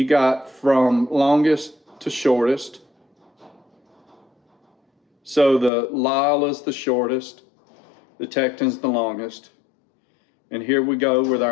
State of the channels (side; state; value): right; drops out; at 5.7 s